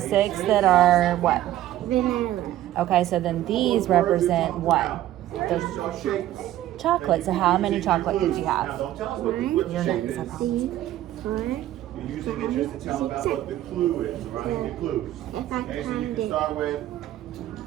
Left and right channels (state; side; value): quieter; left; 13.6 dB